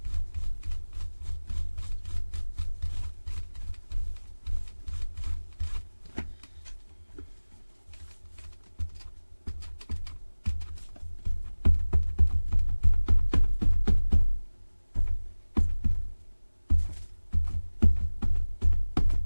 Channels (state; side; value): inverted; both; correlation -1.00